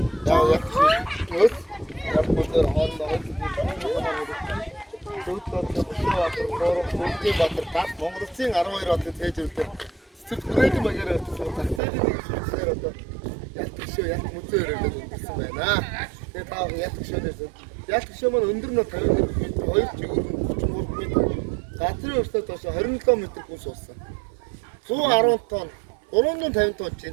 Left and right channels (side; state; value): left; drops out; at 11.8 s